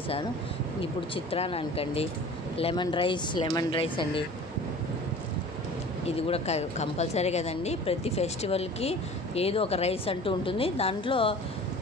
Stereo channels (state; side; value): normal; both; correlation 0.42